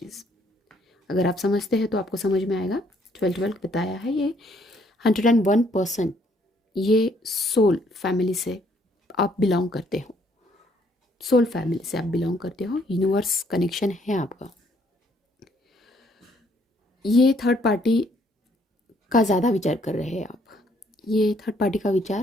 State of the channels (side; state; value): both; normal; correlation 0.67